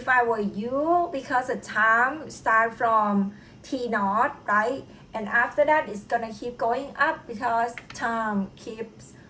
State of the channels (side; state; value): both; identical; correlation 1.00